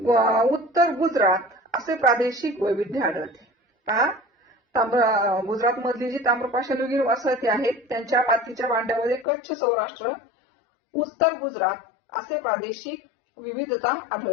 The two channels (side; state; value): right; drops out; at 9.2 s